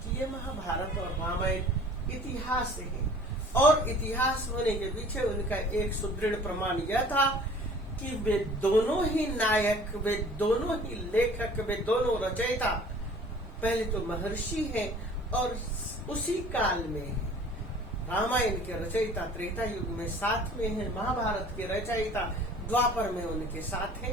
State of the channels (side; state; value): both; normal; correlation 0.49